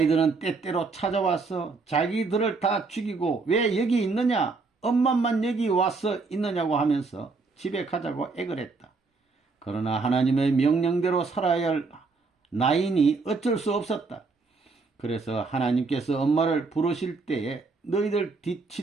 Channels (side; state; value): left; quieter; 4.1 dB